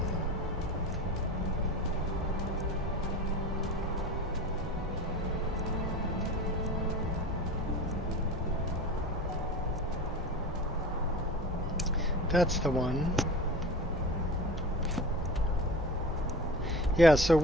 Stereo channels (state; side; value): normal; both; correlation 0.34